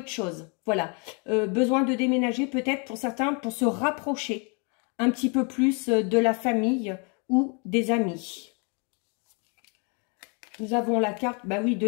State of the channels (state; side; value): quieter; right; 35.1 dB